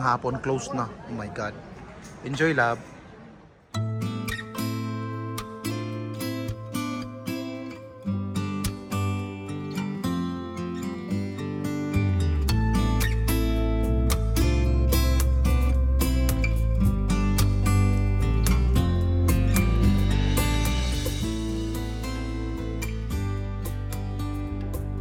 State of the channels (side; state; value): both; identical; correlation 1.00